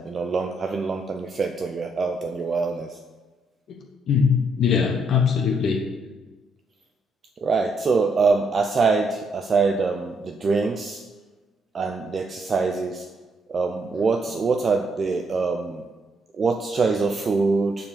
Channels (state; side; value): normal; both; correlation 0.75